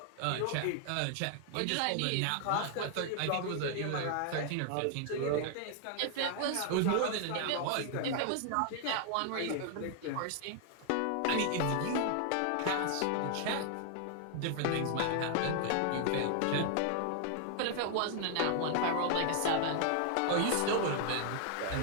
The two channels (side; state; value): both; different; correlation 0.00